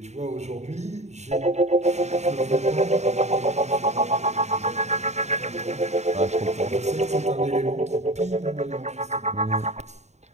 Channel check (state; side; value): late; left; 0.32 ms